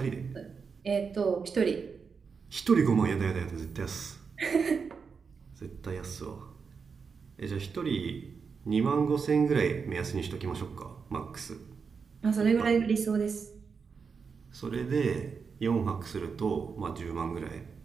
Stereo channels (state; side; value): quieter; left; 5.6 dB